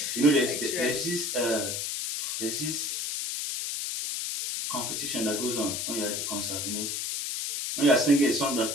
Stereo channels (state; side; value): noise; left; hiss, 2 dB below the sound